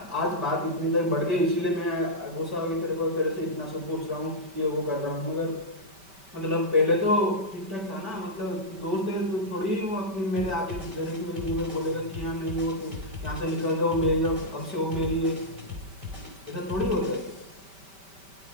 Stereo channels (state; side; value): late; left; 5.1 ms